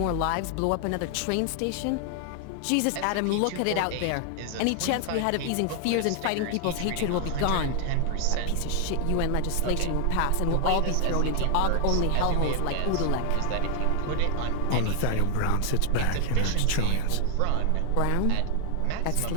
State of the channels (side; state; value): both; different; correlation 0.00